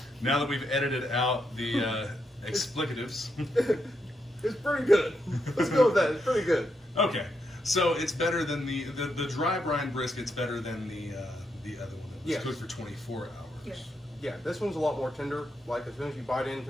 Now that we've edited out the explicatives. It's pretty good. Let's go with that. It's pretty good. Okay, so it's better than the dry brine brisket's better than the other one that was cooked for 24 hours. Yes. Yeah, this one's a lot more tender. Like as soon as you bite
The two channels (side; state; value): both; normal; correlation 0.81